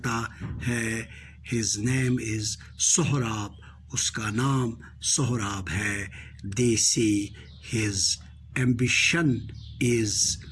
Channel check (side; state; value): both; identical; correlation 1.00